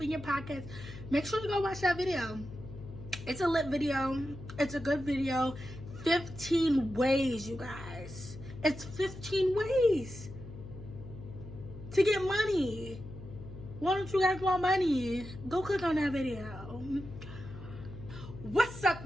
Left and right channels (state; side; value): noise; left; hum, 13 dB below the sound